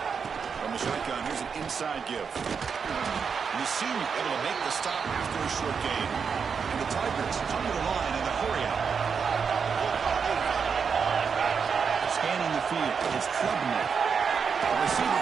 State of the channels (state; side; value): quieter; left; 6.1 dB